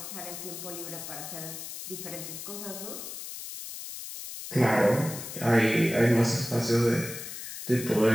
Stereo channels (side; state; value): left; noise; hiss, 9 dB below the sound